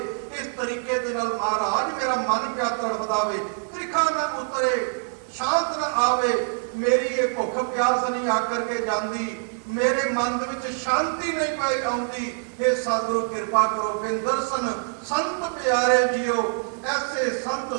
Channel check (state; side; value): silent; left; 62 dB below the other